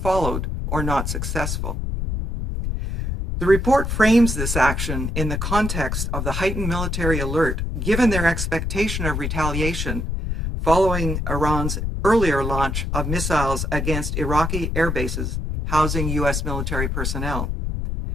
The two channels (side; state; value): left; noise; rumble, 2 dB below the sound